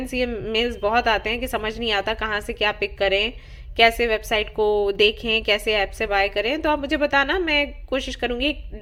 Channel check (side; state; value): both; identical; correlation 1.00